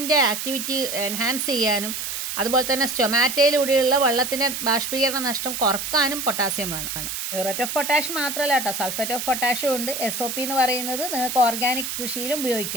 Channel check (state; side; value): noise; right; hiss, 4 dB below the sound